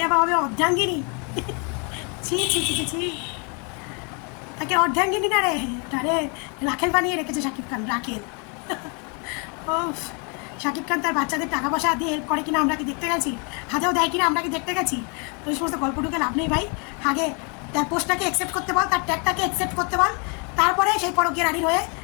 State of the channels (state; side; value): quieter; right; 34.9 dB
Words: আবার হবে অর্ধাঙ্গিনী। ছি ছি ছি ছি, তাকে অর্ধাঙ্গিনী না রে, তারে রাখেল বানিয়ে রেখেছে শাকিব খান, রাখেল। ও, শাকিব খান তার বাচ্চাদের টাকা পয়সা দিয়ে হেল্প করে কিনা আমরা কি দেখতে গেছি? হাতেও দেয় কিনা আমরা কি দেখতে গেছি? তো এই সমস্ত গল্পটুকে লাভ নেই ভাই। আগে তার পোস্টটাকে অ্যাকসেপ্ট করতে বল, তার ট্যাগটাকে অ্যাকসেপ্ট করতে বল, তারপরে সেই পরকীয়া রানীর হয়ে